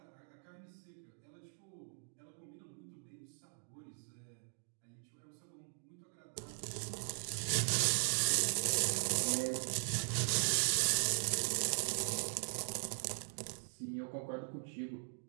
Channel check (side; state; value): left; silent; digital silence